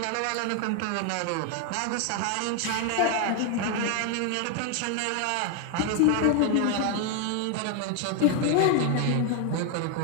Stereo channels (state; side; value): different; both; correlation 0.01